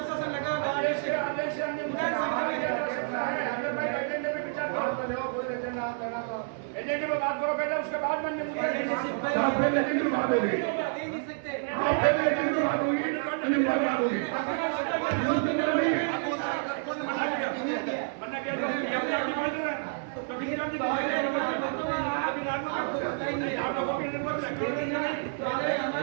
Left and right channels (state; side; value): silent; left; 59 dB below the other